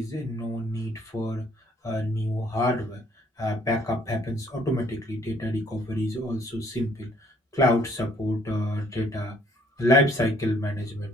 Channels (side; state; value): both; normal; correlation 0.63